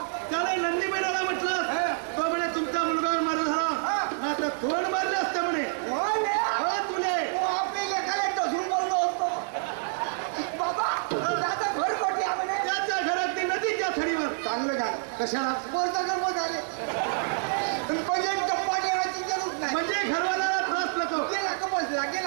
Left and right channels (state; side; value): silent; left; digital silence